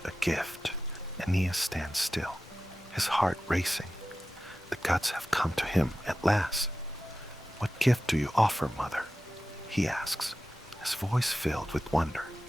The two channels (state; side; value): normal; both; correlation 0.94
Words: a gift." Aeneas stands still, his heart racing. The gods have come to him at last. "What gift do you offer, mother?" he asks, his voice filled with wonder.